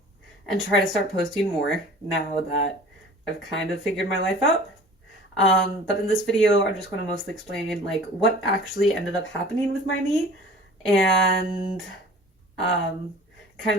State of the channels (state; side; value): normal; both; correlation 0.45